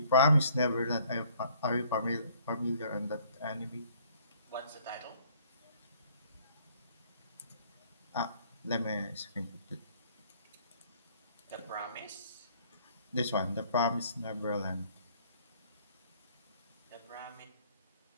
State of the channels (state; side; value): inverted; both; correlation -0.59